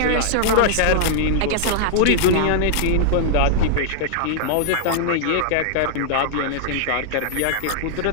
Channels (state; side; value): different; both; correlation -0.01